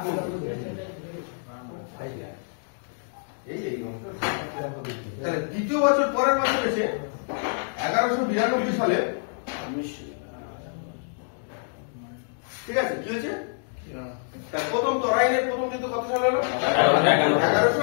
করলো। তাহলে দ্বিতীয় বছর পরের বছর এসে 1192 সালে, ঠিক আছে, কি হয়েছে, প্রথম তরাইনের প্রথম যুদ্ধ কত সালে হলো,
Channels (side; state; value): right; silent; digital silence